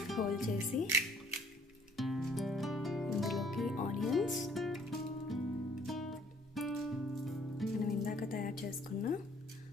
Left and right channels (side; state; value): both; normal; correlation 0.60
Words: హోల్ చేసి ఇందులోకి ఆనియన్స్, మనం ఇందాక తయారు చేసుకున్న